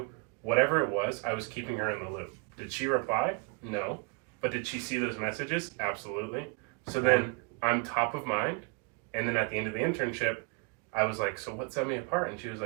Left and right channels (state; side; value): quieter; left; 32.5 dB